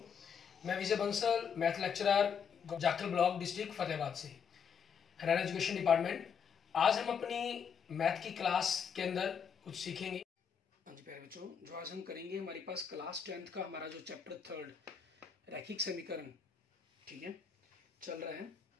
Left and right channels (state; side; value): quieter; right; 7.0 dB